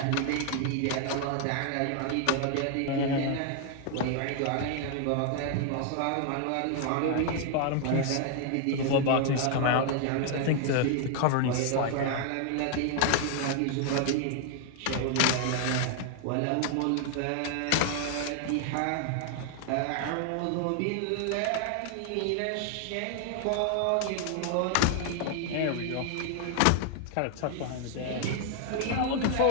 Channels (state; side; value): different; both; correlation 0.00